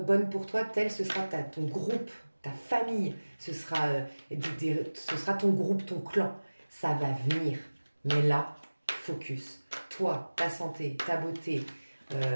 bonnes pour toi, tel ce sera ton groupe, ta famille, ce sera ton groupe, ton clan. Ça va venir. Mais là, focus. Toi, ta santé, ta beauté,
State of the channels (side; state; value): both; inverted; correlation -1.00